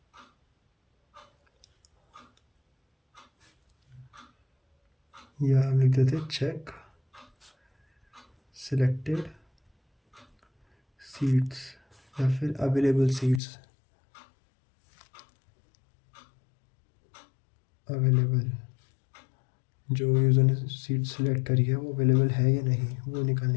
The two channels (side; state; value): right; drops out; at 13.4 s